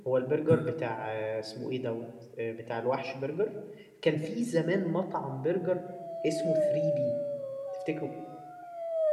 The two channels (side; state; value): both; identical; correlation 1.00